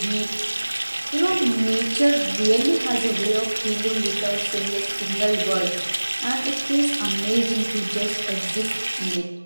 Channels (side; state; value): both; inverted; correlation -1.00